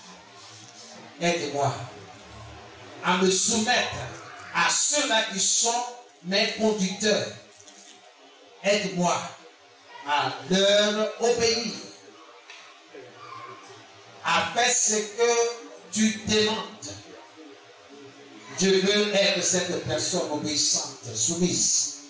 aide-moi à me soumettre à ceux-là qui sont mes conducteurs. Aide-moi à leur obéir, à faire ce que tu demandes. Je veux être cette personne obéissante, soumise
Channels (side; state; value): both; identical; correlation 1.00